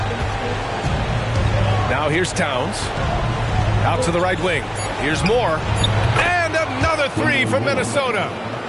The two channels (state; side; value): identical; both; correlation 1.00